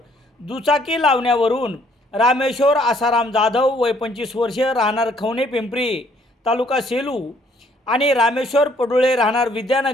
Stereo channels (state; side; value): normal; both; correlation 0.64